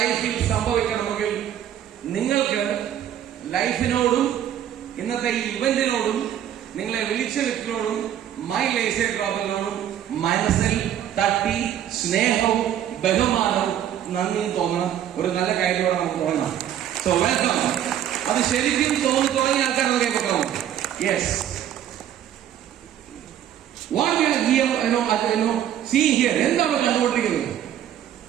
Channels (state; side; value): quieter; left; 10.6 dB